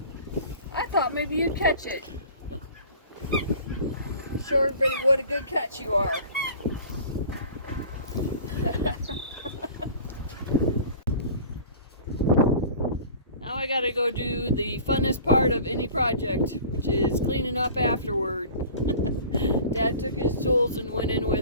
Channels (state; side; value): inverted; both; correlation -0.43